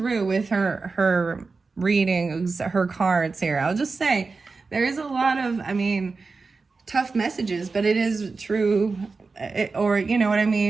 with her readings, her cards here. I'll just say there is a lot of, I mean, tough messages, but it is true, or you know what I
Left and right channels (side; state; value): left; quieter; 4.2 dB